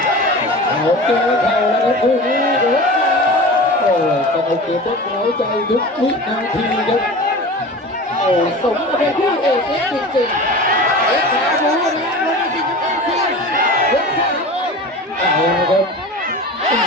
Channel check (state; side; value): normal; both; correlation 0.34